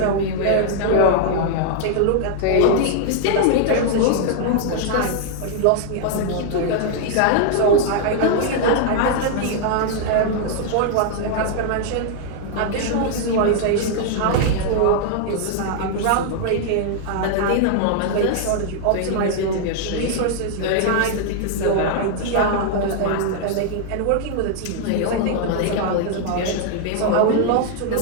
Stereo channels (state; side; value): different; both; correlation -0.01